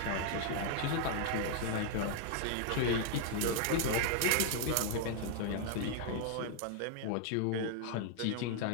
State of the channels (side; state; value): both; different; correlation 0.00